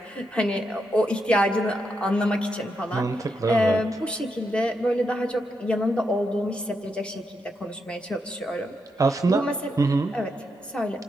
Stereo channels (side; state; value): both; normal; correlation 0.82